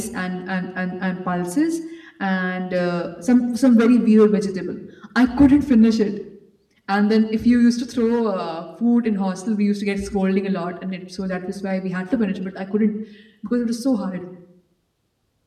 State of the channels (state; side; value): identical; both; correlation 1.00